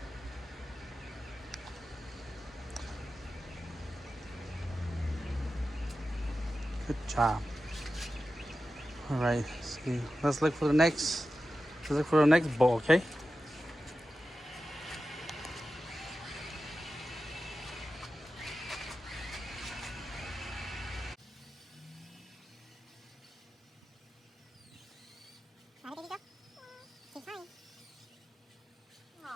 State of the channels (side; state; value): both; normal; correlation 0.93